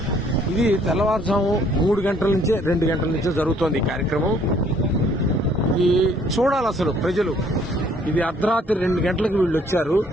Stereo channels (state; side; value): normal; both; correlation 0.62